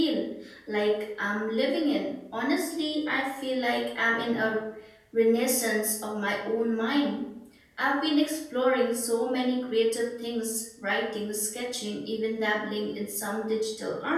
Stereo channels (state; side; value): identical; both; correlation 1.00